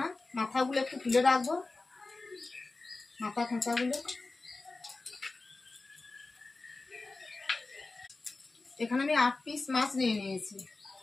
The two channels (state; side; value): quieter; right; 3.5 dB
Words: মাথাগুলো একটু তুলে রাখবো, মাথা খোঁচাগুলো। এখানে আমি 8 পিস মাছ নিয়ে নিয়েছি।